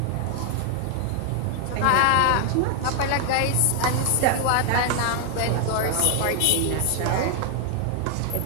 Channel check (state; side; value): different; both; correlation 0.00